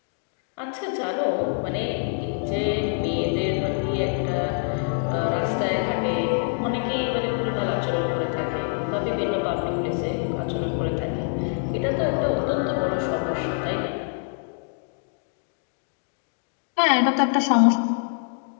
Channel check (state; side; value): silent; right; digital silence